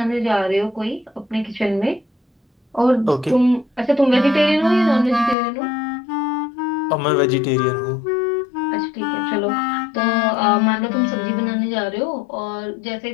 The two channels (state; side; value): drops out; right; at 5.4 s